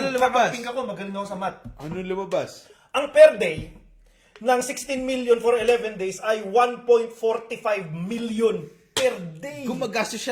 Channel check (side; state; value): both; identical; correlation 1.00